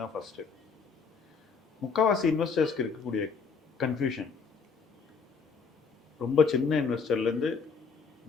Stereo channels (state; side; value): quieter; right; 5.3 dB